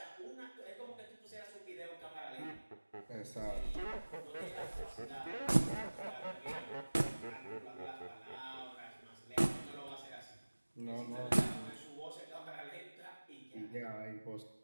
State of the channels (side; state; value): both; inverted; correlation -1.00